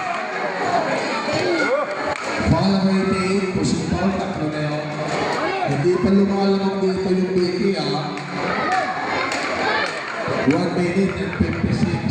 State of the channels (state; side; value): identical; both; correlation 1.00